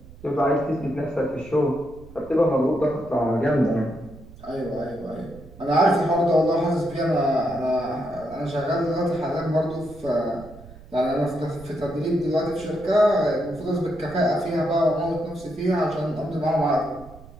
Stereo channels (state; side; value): noise; right; rumble, 19 dB below the sound